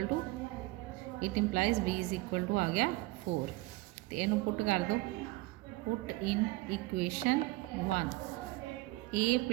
to it implies b is equal to आ गया 4। तो इनू पुट कर दो, put in equation 1 a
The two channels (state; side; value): quieter; left; 20.7 dB